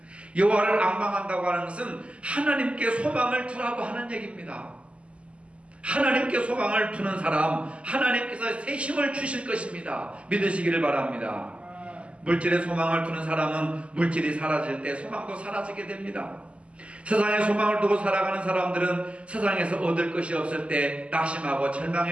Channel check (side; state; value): left; late; 0.058 ms